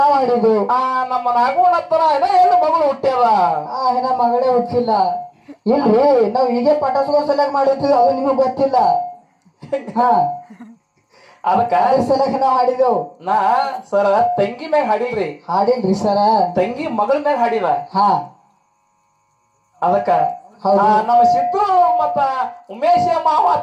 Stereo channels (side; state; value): both; identical; correlation 1.00